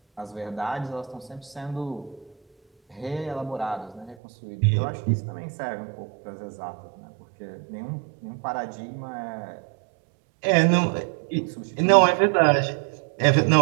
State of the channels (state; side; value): drops out; left; at 4.2 s